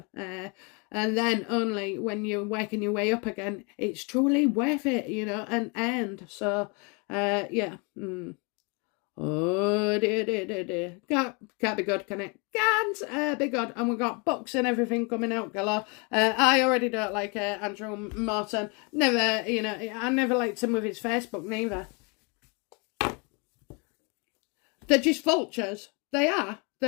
And then only when you're working your way up again, it's truly worth it, you know, and end. So, yeah. Oh, dear. Can't be good, can it? Can't be good. And we've got books and everything coming out galore. I already don't like Andrew Morton. Never, you know, I never liked him with his Facebook neither. They're just vultures. They are.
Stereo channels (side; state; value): right; quieter; 32.4 dB